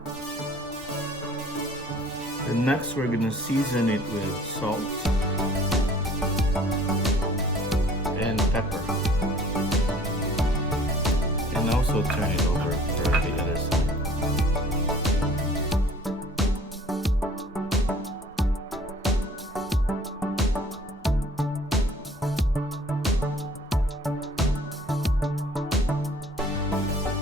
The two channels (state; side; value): normal; both; correlation 0.52